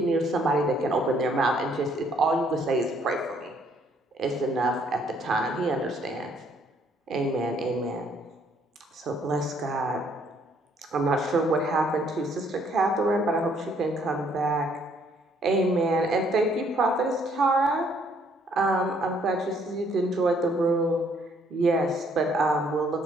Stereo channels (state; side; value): normal; both; correlation 0.66